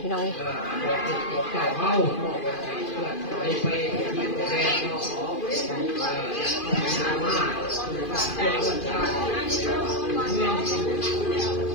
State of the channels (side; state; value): right; late; 2.4 ms